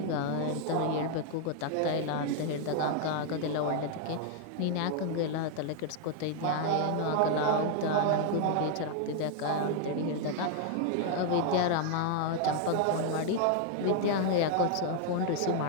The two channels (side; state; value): both; different; correlation 0.00